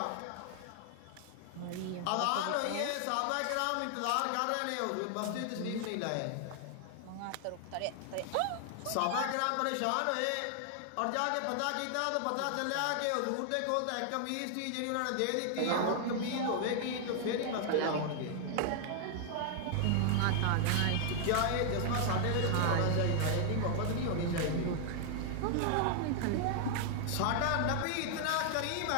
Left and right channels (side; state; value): both; different; correlation 0.00